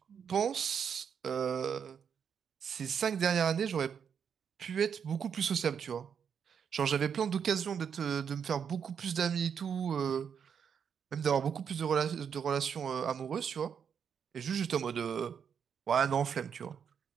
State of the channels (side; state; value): left; quieter; 7.4 dB